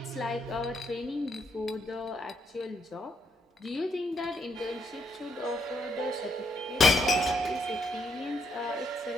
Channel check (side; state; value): both; normal; correlation 0.74